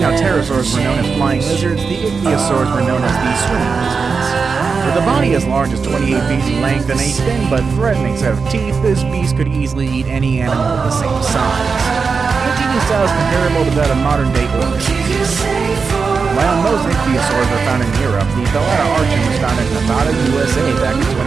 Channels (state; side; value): quieter; left; 5.1 dB